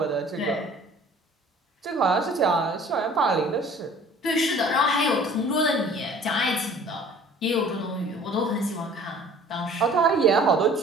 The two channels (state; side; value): normal; both; correlation 0.50